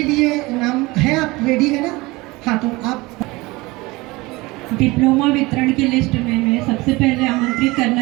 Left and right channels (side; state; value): left; quieter; 22.2 dB